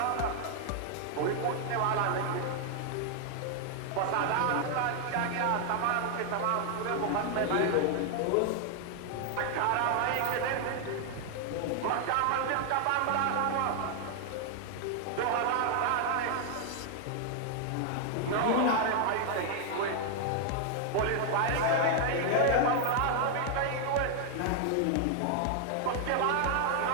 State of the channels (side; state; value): both; different; correlation 0.00